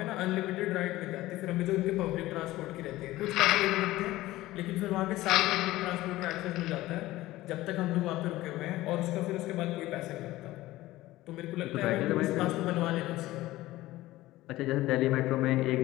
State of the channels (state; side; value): quieter; right; 17.1 dB